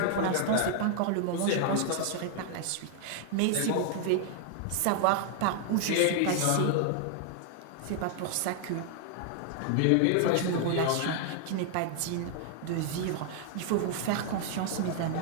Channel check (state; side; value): different; both; correlation 0.00